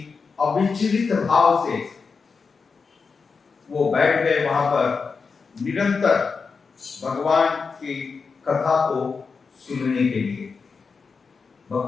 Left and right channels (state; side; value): quieter; right; 5.0 dB